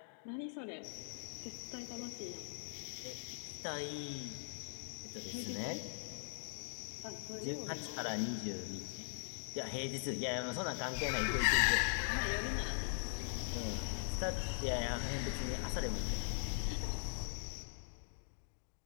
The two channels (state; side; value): silent; right; digital silence